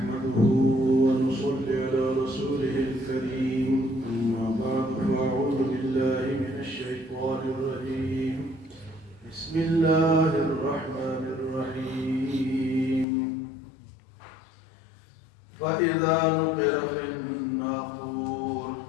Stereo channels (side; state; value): right; drops out; at 13.1 s